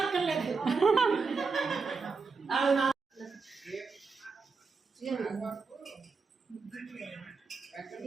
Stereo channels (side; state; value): left; quieter; 4.7 dB